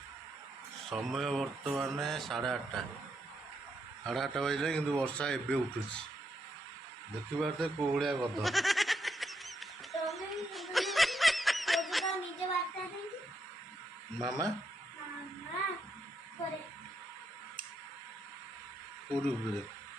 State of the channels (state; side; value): normal; both; correlation 0.79